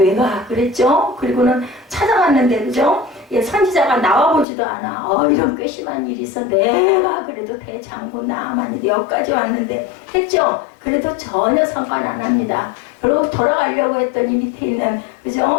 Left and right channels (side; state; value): right; drops out; at 4.5 s